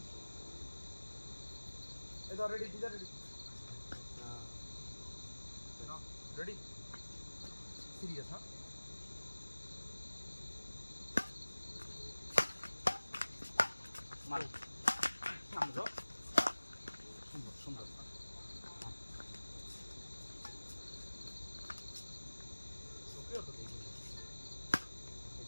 এই ধর রেডি দিদা রেডি রেডি সিরিয়াস হ্যাঁ মারো সামনে যাও সুন্দর সুন্দর ওকেও তো দেখি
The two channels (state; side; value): inverted; both; correlation -1.00